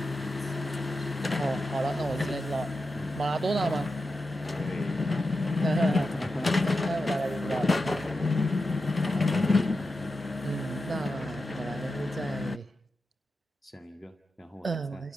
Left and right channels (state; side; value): normal; both; correlation 0.90